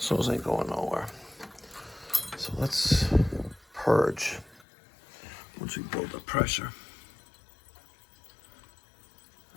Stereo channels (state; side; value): drops out; right; at 4.7 s